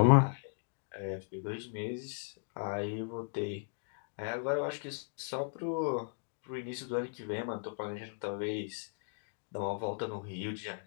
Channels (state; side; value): silent; right; digital silence